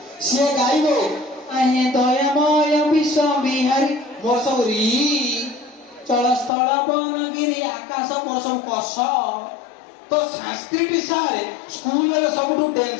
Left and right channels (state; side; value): drops out; right; at 6.5 s